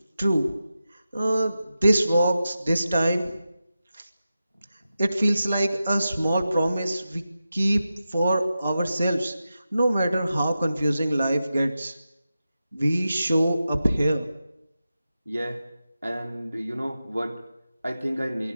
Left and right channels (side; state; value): both; inverted; correlation -0.91